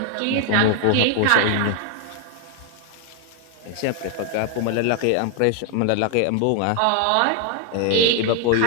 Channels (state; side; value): different; both; correlation 0.00